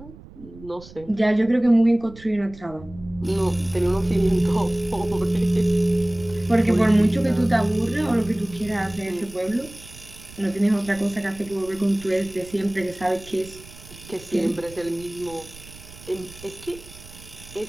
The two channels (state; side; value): noise; right; rumble, 19 dB below the sound